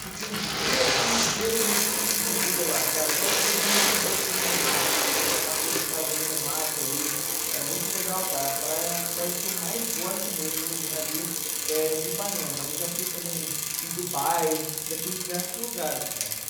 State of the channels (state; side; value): identical; both; correlation 1.00